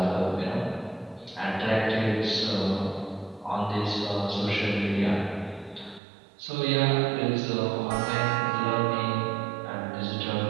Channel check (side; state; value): left; drops out; at 6.0 s